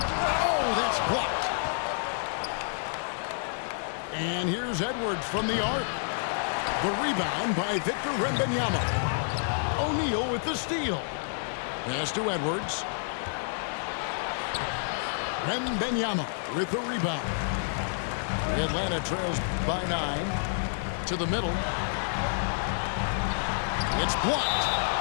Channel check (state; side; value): silent; right; digital silence